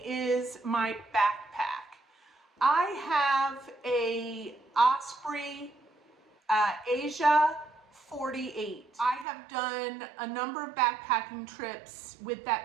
is my backpack. I have a Osprey Asia 48. I have done a number of backpacking trips with that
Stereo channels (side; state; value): left; drops out; at 9.2 s